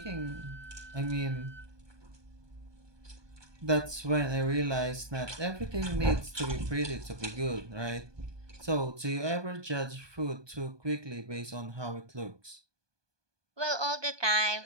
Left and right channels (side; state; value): left; late; 1.2 ms